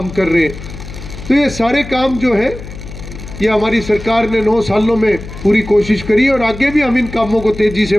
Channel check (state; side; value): noise; left; hum, 12 dB below the sound